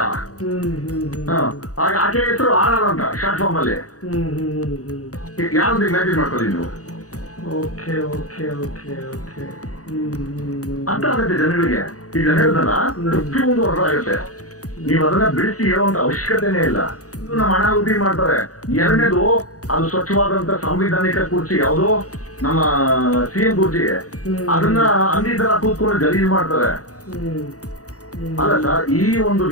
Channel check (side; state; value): right; late; 0.66 ms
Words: ಆಕೆ ಹೆಸರು ಆರ್ ಅಂತ ಶಾರ್ಟ್ ಫಾರ್ಮ್ ಅಲ್ಲಿ. ಯಾವ್ದು ಇಮ್ಯಾಜಿನ್ ಮಾಡ್ಕೊಳ್ಳಿ ನೀವು. ಅಂತ ಆಗುತ್ತೆ ಜನಗಳಿಗೆ. ಈಗ ಹೇಳ್ದಲ್ಲ, 51 ವರ್ಷ ಆಗುತ್ತೆ. ನೀವು ಅದನ್ನ ಬಿಡಿಸಿ ಹೇಳುವಂತ ಅವಶ್ಯಕತೆನೇ ಇಲ್ಲ. ಇದು ನಮ್ಮ ಹಣ ಉಪಿ ಮಾಡ್ತಾರೆ. ಎರಡನೇದು, ಅದು ಸ್ವಚ್ಛವಾದಂತ ಸಾಂವಿಧಾನಿಕ ಕುರ್ಚಿ, ಯಾವುದೋ ನಮ್ಮ ಸಿಎಂ ಕುರ್ಚಿ, ಅದನ್ನ ಅಂದಿ ತರ ಕೂತ್ಕೊಂಡು ಗಲೀಜ್ ಮಾಡ್ತಾರೆ. ಅಲ್ಲ ಸರ್, ಈ ಒಂದು